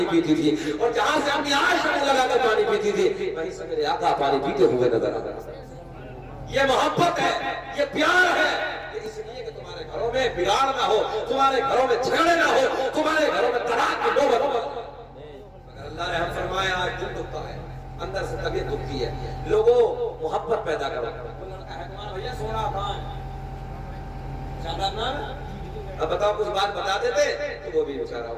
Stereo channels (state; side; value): identical; both; correlation 1.00